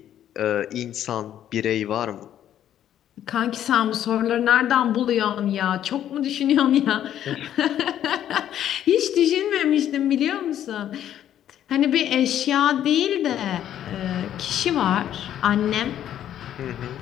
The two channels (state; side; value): quieter; right; 10.9 dB